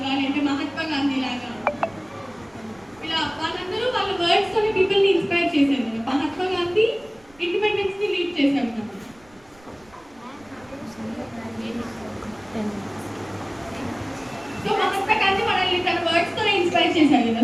లేదంటే మహాత్మా గాంధీ లాగా ఇలా వాళ్ళందరూ వాళ్ళ వర్డ్స్ తోని పీపుల్ని ఇన్స్పైర్ చేశారు కదా. మహాత్మా గాంధీ ఇండిపెండెన్స్ ని లీడ్ చేశారు కదా. సో మహాత్మా గాంధీ మనల్ని తన వర్డ్స్ తోనే ఇన్స్పైర్ చేశారు కదా.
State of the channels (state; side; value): noise; right; rumble, 29 dB below the sound